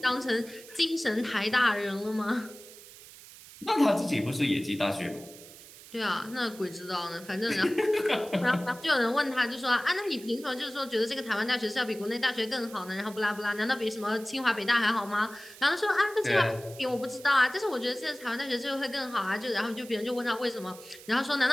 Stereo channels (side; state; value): right; noise; hiss, 18 dB below the sound